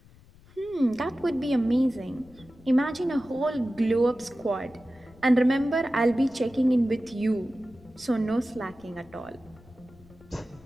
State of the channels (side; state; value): left; noise; rumble, 25 dB below the sound